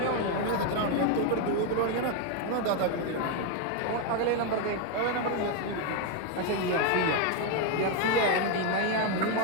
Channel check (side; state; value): both; different; correlation 0.01